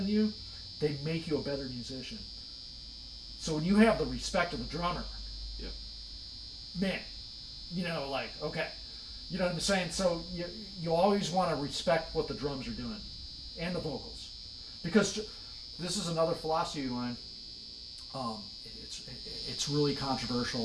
you, they make you a better musician. So when you have the respect of the drummer, yep. Man, you know, like, okay, you know what I'm saying? So you always want to respect what the drums are doing and the vocals, because this is another philosophy of mine. It's really controversial.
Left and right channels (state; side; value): identical; both; correlation 1.00